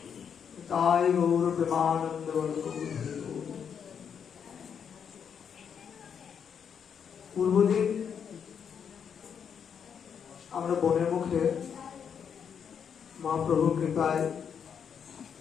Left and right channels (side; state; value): right; quieter; 7.4 dB